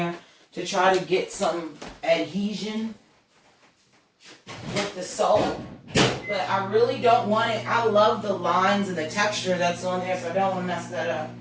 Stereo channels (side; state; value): both; identical; correlation 1.00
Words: to try to get some adhesion with the salt. But I really don't want it. I love the lines and the texture that's on there, so I don't want to mess that up.